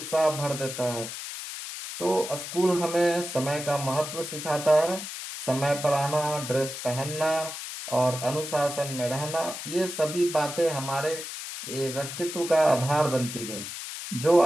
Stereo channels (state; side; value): noise; left; hiss, 8 dB below the sound